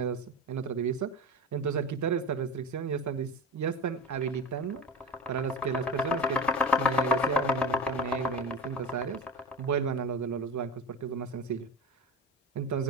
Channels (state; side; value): normal; both; correlation 0.26